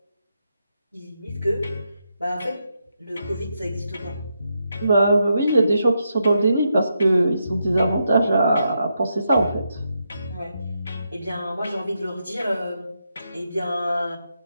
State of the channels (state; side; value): inverted; both; correlation -0.83